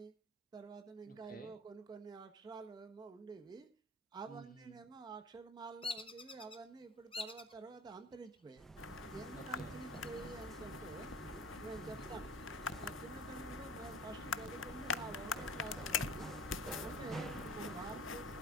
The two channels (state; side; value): normal; both; correlation 0.42